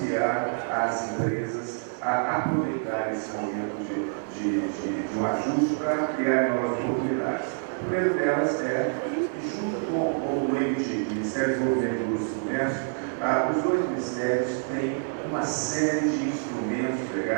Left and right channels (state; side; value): silent; left; 55 dB below the other